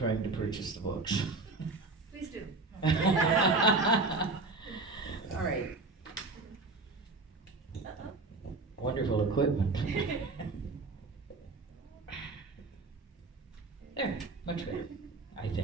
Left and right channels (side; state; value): left; quieter; 3.5 dB